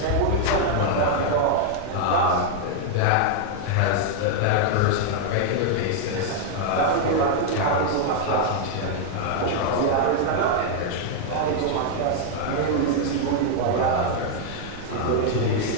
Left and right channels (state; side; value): different; both; correlation 0.00